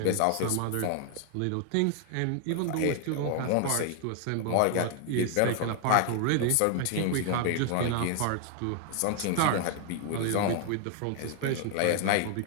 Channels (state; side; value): different; both; correlation 0.00